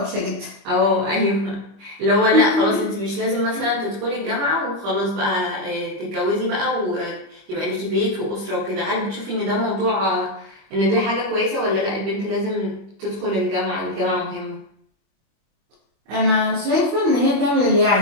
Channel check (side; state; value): left; late; 25 ms